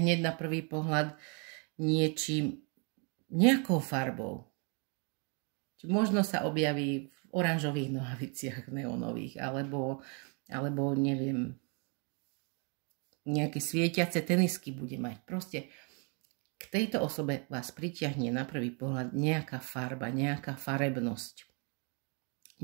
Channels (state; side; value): quieter; left; 35.8 dB